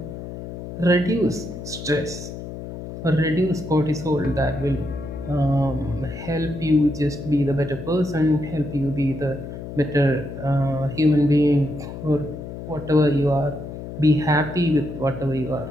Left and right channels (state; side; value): noise; left; hum, 10 dB below the sound